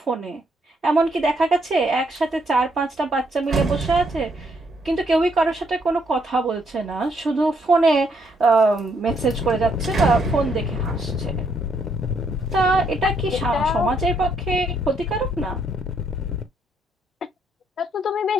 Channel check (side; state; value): both; normal; correlation 0.72